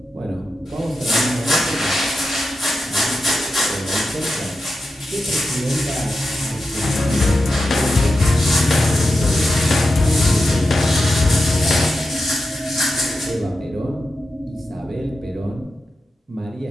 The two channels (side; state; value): both; normal; correlation 0.90